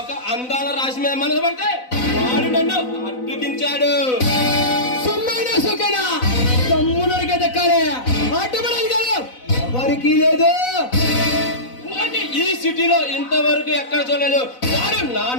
అందాల రాశి మీద మనసు పడితే వాడు నన్ను అడ్డుకించాడు. సొమ్మైనా సొక్కైనా తమ్ముడికే దక్కాలి, అడ్డుపడాలి కాదు ఎవరికి లేదు. వాడిని ఈ సిటీలో ఇంతవరకు ఎక్కడ చూడలేదు. వాడు నా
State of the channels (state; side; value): late; right; 4.0 ms